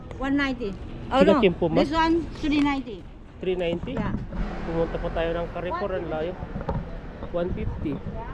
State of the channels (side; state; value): both; identical; correlation 1.00